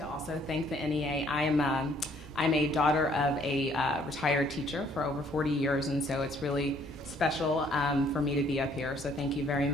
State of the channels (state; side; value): normal; both; correlation 0.63